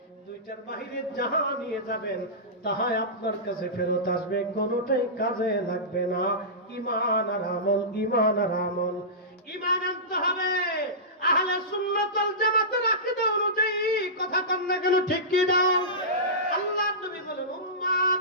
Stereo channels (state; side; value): normal; both; correlation -0.19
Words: দুইটার বাহিরে যাহা নিয়ে যাবেন তাহাই আপনার কাছে ফেরত আসবে, কোনোটাই কাজে লাগবে না। ঈমান আর আমল, ঈমান আর আমল। ঈমান আনতে হবে আহলে সুন্নাত ওয়াল জামাতের আকীদা অনুযায়ী। কথা কন না কেন, ঠিক কি দাও? আল্লাহর নবী বলেন উম্মত,